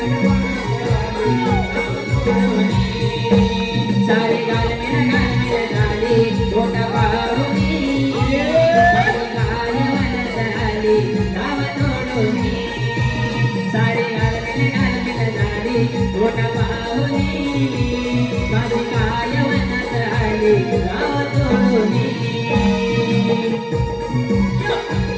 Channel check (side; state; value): both; identical; correlation 1.00